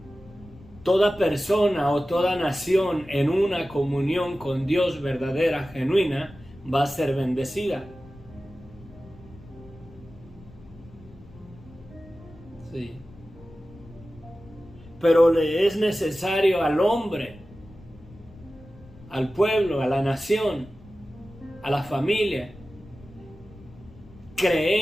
toda persona o toda nación en una comunión con Dios verdadera, genuina, va a ser bendecida. Sí. Pero le es necesario al hombre, al pueblo, a la nación, a la familia,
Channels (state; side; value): noise; left; rumble, 21 dB below the sound